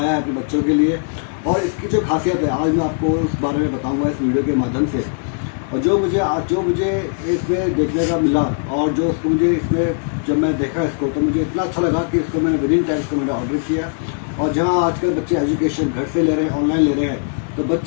है अपने बच्चों के लिए। और इसकी जो खासियत है आज मैं आपको उस बारे में बताऊंगा इस वीडियो के माध्यम से। और जो मुझे इसमें देखने का मिला और जो उसको मुझे इसमें जब मैं देखा इसको तो मुझे इतना अच्छा लगा कि इसको मैंने विदिन टाइम इसको मैंने ऑर्डर किया। और जहाँ आजकल बच्चे एजुकेशन घर से ले रहे हैं, ऑनलाइन ले रहे हैं, तो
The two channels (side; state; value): right; silent; digital silence